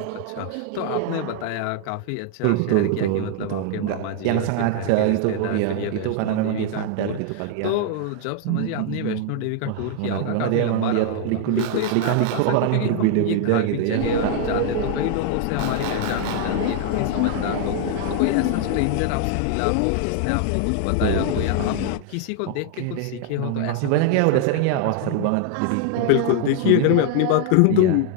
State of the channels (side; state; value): both; different; correlation 0.00